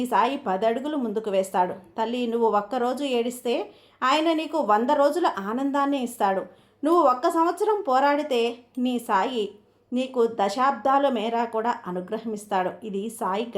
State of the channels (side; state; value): both; identical; correlation 1.00